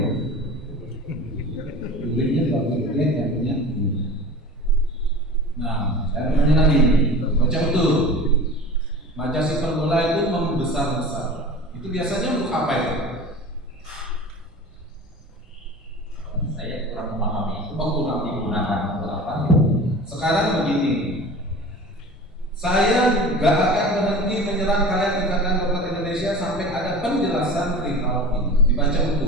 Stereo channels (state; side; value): normal; both; correlation 0.37